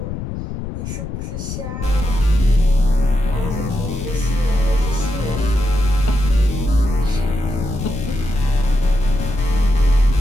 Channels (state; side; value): noise; left; rumble, 6 dB below the sound